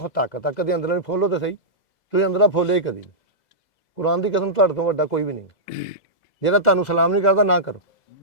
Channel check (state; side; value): late; right; 2.0 ms